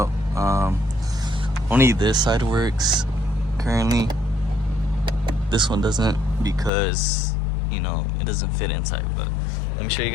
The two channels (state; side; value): drops out; right; at 6.7 s